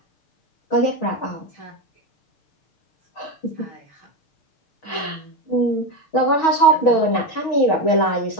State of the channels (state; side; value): late; right; 6.3 ms